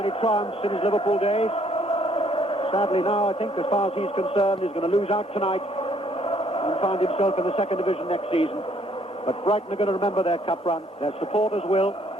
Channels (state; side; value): normal; both; correlation 0.65